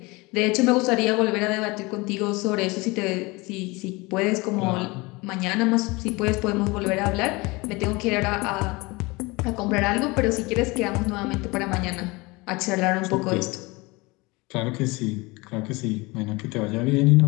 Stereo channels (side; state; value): right; quieter; 24.2 dB